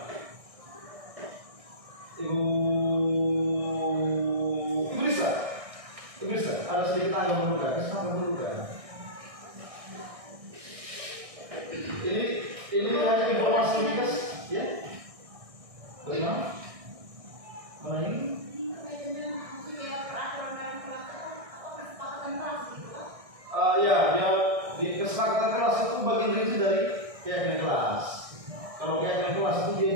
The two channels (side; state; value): left; late; 1.6 ms